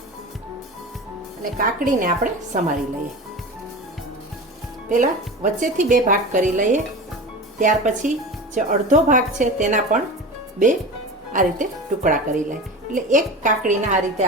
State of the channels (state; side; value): normal; both; correlation 0.30